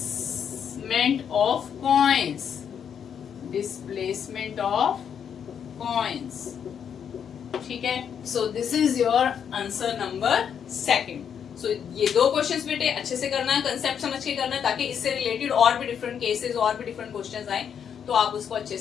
of coins, displacement of coins, ठीक है। So this is your answer number 2. सो ये 2 questions बेटे अच्छे से करना है, concept समझ के करना है, ताकि इससे रिलेटेड और भी डिफरेंट केसेस और भी डिफरेंट क्वेश्चंस आए तो आप उसको अच्छे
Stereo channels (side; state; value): right; quieter; 7.9 dB